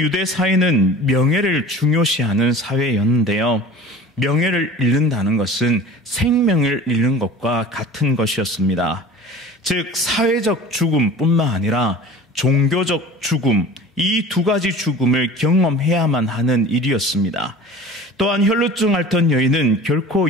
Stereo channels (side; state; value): both; normal; correlation 0.41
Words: 사회는 명예를 중요시하는 사회였는데요. 명예를 잃는다는 것은 생명을 잃는 것과 같은 것이었습니다. 즉 사회적 죽음뿐만 아니라 종교적 죽음, 이 두 가지 죽음을 경험해야만 하는 일이었습니다. 또한 혈루증 앓던 여인은